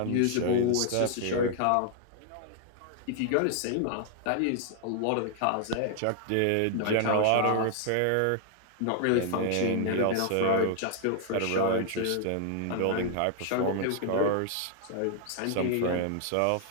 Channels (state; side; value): different; both; correlation 0.00